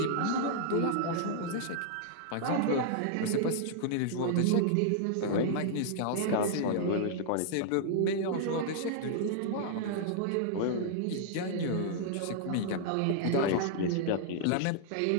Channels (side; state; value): both; different; correlation -0.01